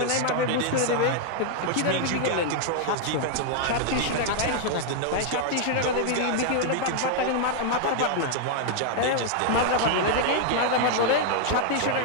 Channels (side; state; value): both; different; correlation 0.00